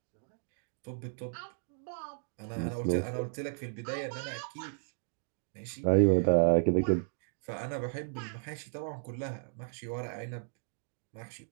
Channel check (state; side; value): silent; left; digital silence